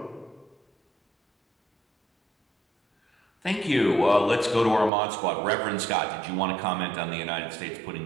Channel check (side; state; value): left; drops out; at 4.9 s